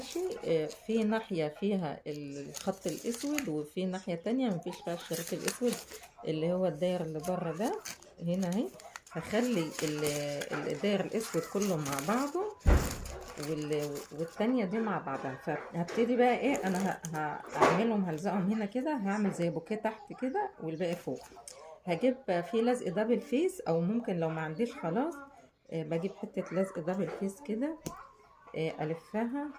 في ناحية فيها الخط الاسود، وفي ناحية تانية مفيش فيها الشريط الاسود اللي هو الداير اللي بره ده. هنا اهي هخلي الداير الاسود كله مع بعضه، والتانية دي مع بعضها. فهبتدي بقى انا هعملهم، هلزقهم هنا كده، هعمل زي بوكيه تحت كده والباقي فوق. هجيب في لزق دبل فيس، او ممكن لو ما عنديش خلاص بجيب حتة لزق دبل فيس كده، الفها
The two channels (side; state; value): both; identical; correlation 1.00